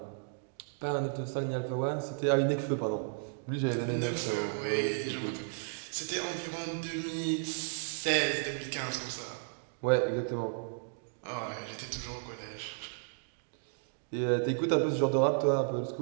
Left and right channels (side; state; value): left; silent; digital silence